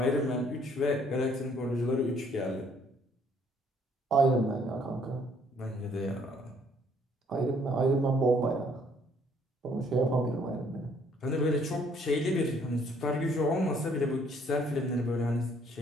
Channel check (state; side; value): normal; both; correlation 0.64